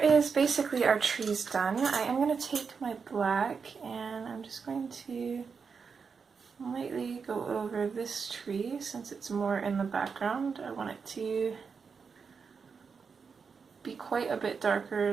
basically our trees done. I am going to take my black and I'm just going to lightly go over this tree since it's more in the background. I want it to be quite a bit darker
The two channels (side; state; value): left; quieter; 5.6 dB